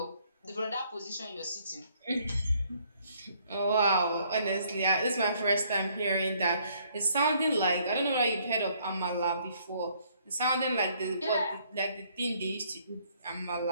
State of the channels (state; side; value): inverted; both; correlation -0.65